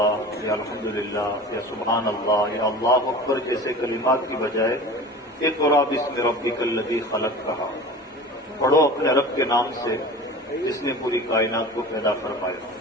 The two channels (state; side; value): normal; both; correlation 0.37